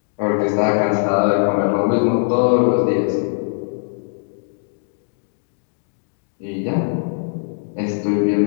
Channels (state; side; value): silent; right; digital silence